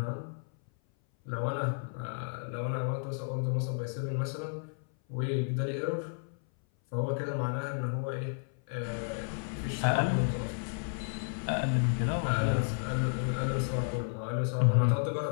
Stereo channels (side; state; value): right; silent; 56 dB below the other